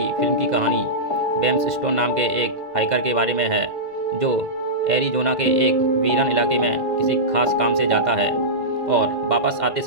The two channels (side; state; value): left; late; 2.0 ms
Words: फिल्म की कहानी बेम्स स्टोन नाम के एक हाइकर के बारे में है, जो एरिज़ोना के एक वीरान इलाके में किसी खास काम से जाता है और वापस आते